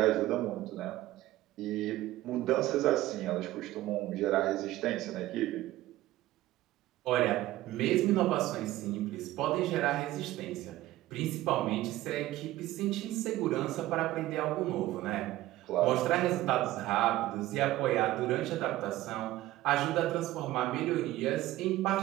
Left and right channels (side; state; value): left; quieter; 16.0 dB